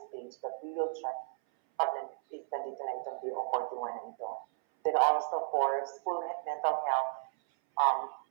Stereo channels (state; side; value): silent; left; 55 dB below the other